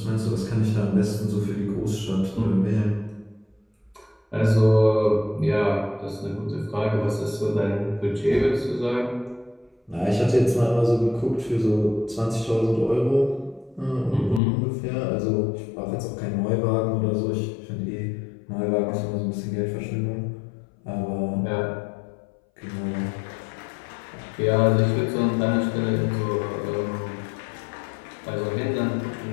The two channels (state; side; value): drops out; right; at 14.4 s